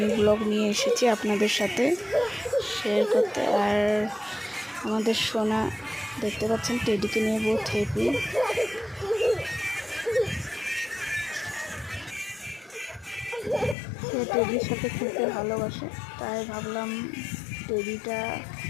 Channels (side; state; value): right; drops out; at 13.8 s